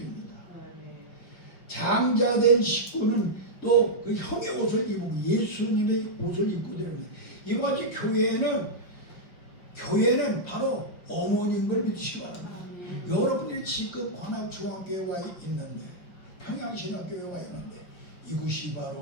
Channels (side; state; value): right; late; 5.5 ms